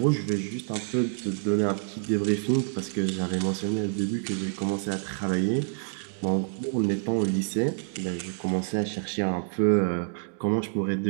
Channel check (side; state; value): left; silent; 60 dB below the other